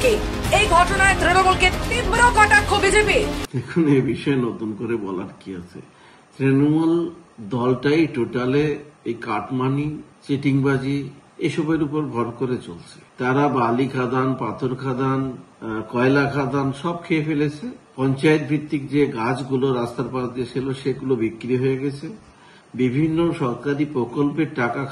এই ঘটনায় তৃণমূলকে তীব্র কটাক্ষ বিজেপি। এখন এই বিষয়ে নতুন করে বলার কি আছে? তৃণমূল দলটাই টোটালে এই কাটমানি, চিটিংবাজি এসবের উপর ভর করে চলছে। তারা বালি খাদান, পাথর খাদান, কয়লা খাদান সব খেয়ে ফেলেছে। পঞ্চায়েত ভিত্তিক যে গাছগুলো রাস্তার পাশ দিয়ে ছিল সেগুলো বিক্রি হয়ে গেছে। বিভিন্ন সরকারি প্রকল্পের টাকা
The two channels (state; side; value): identical; both; correlation 1.00